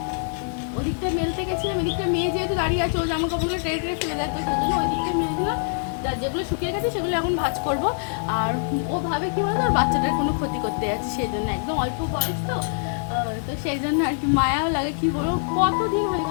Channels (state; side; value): silent; right; 62 dB below the other